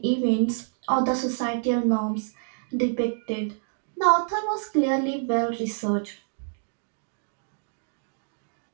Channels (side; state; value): left; silent; digital silence